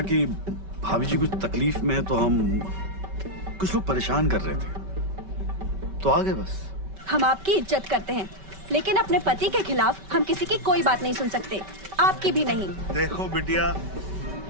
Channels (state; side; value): late; left; 5.2 ms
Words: कि भाभी जी कुछ तकलीफ में है, तो हम कुछ लोग परेशान कर रहे थे, तो आ गए बस। हम आपकी इज्जत करते हैं, लेकिन अपने पति के खिलाफ हम किसी की कोई बात नहीं सुन सकते, आपकी भी नहीं। देखो बिटिया,